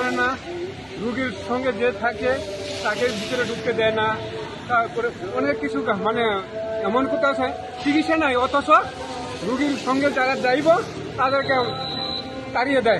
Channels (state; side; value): identical; both; correlation 1.00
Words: না। রুগীর সঙ্গে যে থাকে তাকে ভিতরে ঢুকতে দেয় না। তারপরে অনেক কিছু মানে এমন কোথাও চিকিৎসা নাই, অথচ রুগীর সঙ্গে যারা যাইব তাদেরকে তাড়িয়ে